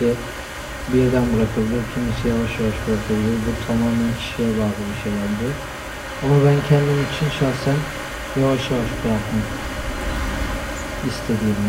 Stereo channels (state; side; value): identical; both; correlation 1.00